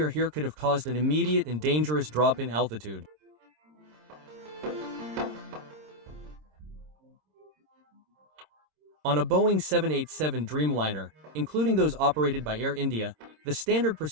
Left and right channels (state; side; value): late; left; 26 ms